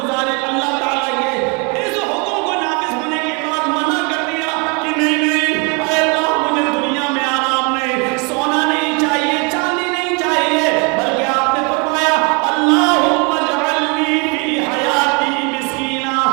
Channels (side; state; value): left; quieter; 32.7 dB